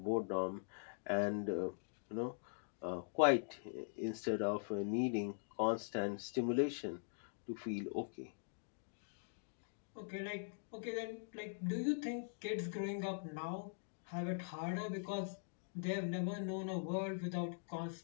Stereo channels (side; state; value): right; silent; digital silence